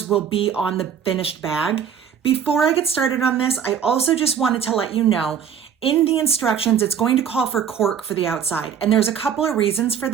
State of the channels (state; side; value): quieter; left; 7.9 dB